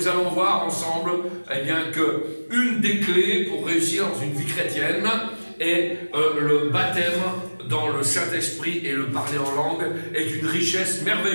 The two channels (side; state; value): both; inverted; correlation -1.00